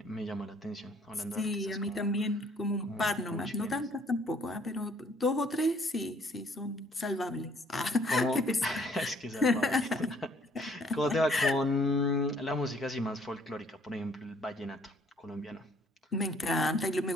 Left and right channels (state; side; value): normal; both; correlation 0.61